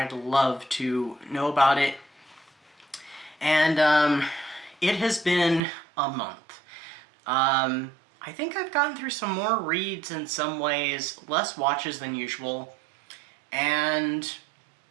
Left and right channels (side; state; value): left; drops out; at 5.6 s